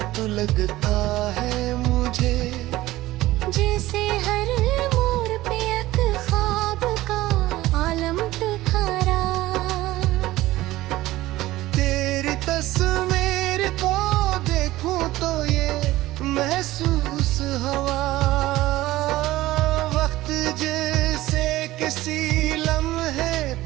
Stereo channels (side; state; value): left; quieter; 16.9 dB